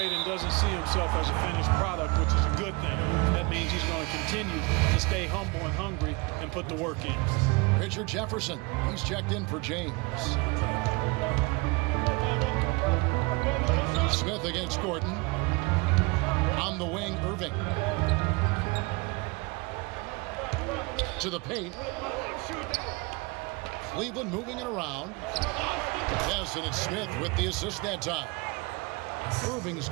and doesn't see himself as a finished product, which is a good thing. That means he's going to continue to stay humble and hungry and put the work in. Richard Jefferson, he's checked in for James. Smith against Gordon. On the wing, Irving. To the paint. Cleveland moving it around. Yes, and it's Smith with the assist that time. Irving's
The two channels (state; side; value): quieter; left; 26.9 dB